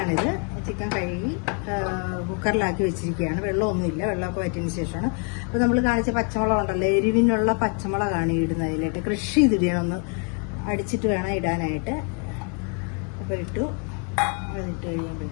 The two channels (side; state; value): right; quieter; 37.9 dB